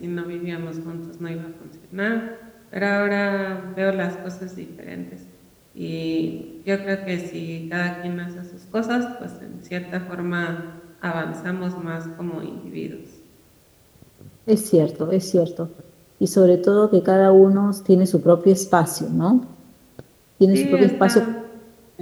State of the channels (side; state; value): both; identical; correlation 1.00